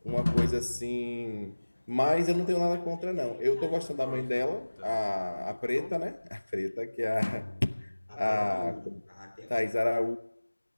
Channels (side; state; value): both; inverted; correlation -1.00